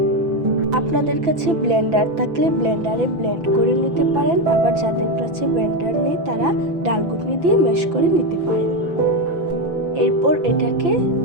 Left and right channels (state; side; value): late; left; 6.0 ms